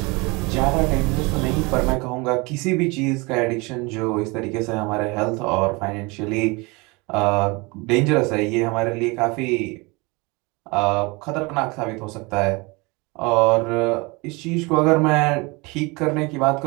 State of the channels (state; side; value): quieter; left; 26.5 dB